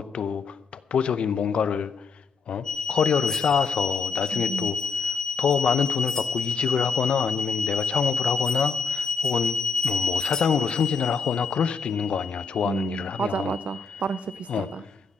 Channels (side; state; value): right; quieter; 4.9 dB